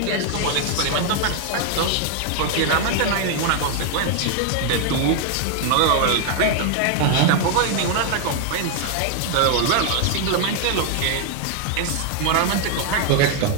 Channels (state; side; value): different; both; correlation 0.00